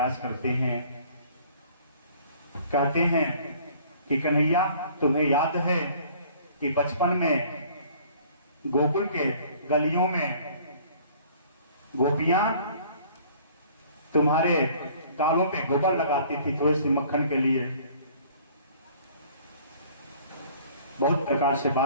करते हैं। कहते हैं कि कन्हैया तुम्हें याद है कि बचपन में गोकुल के गलियों में गोपियां तुम्हारे गालों पे गोबर लगाती थी थोड़ी सी मक्खन के लिए। बहुत प्रकार से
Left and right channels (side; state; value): both; inverted; correlation -0.53